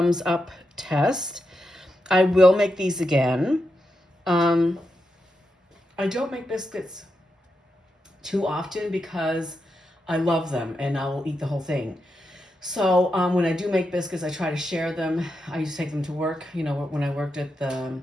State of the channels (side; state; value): both; normal; correlation 0.86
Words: up test. I will make these again. I don't make biscuits too often because I love them, and I will eat the whole thing. So when I do make biscuits, I try to share them. I used to take them to work, when I worked at the